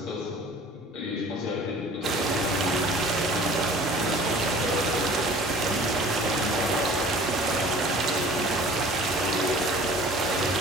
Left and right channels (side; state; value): both; normal; correlation 0.47